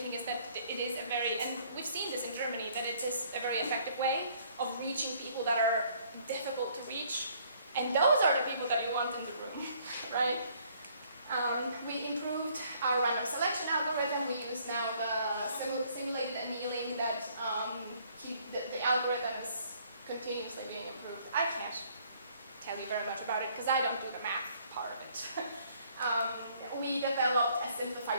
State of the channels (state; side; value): inverted; both; correlation -0.62